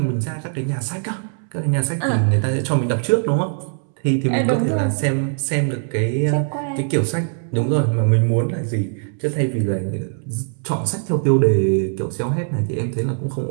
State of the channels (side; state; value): left; silent; 65 dB below the other